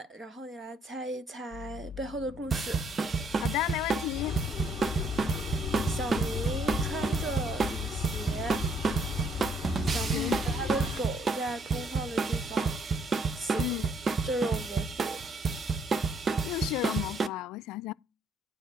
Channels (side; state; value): both; normal; correlation 0.66